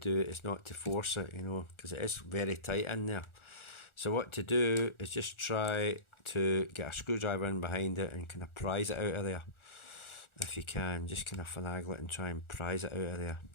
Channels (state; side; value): late; right; 1.4 ms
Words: it is not to force it, you know, because it is very tight in there. So what to do is just try to get a screwdriver in behind it and kind of prise it out of there. If you can, just kind of finagle it and try and prise it out of there.